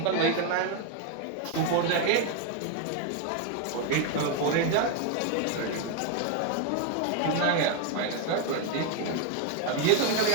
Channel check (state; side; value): different; both; correlation 0.01